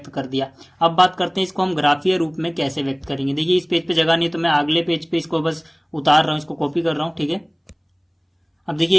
कर दिया। अब बात करते हैं इसको हम ग्राफीय रूप में कैसे व्यक्त करेंगे। देखिए इस पेज पे जगह नहीं तो मैं अगले पेज पे इसको बस उतार रहा हूँ, इसको कॉपी कर रहा हूँ। ठीक है, अब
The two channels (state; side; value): identical; both; correlation 1.00